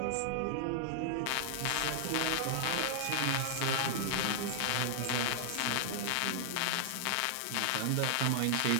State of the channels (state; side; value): different; both; correlation -0.01